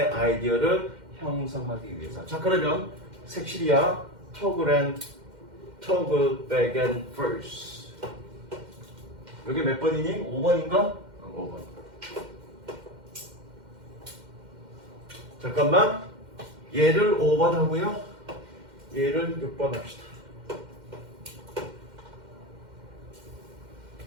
아이디어를 형성하기 위해서. 자, 그러면 색칠이야. Toggle back and forth. 여기 몇 번이니? 5번인가? 5번. 잠깐만. 얘를 5번 하고요. 얘를 6번 합시다.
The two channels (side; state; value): left; late; 2.1 ms